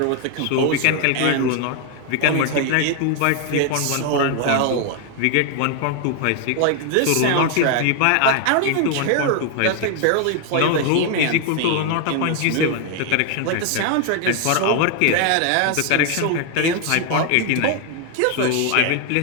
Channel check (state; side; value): different; both; correlation 0.01